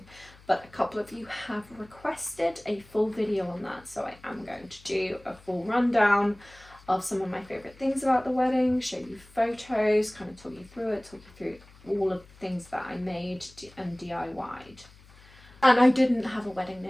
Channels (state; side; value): noise; left; hum, 24 dB below the sound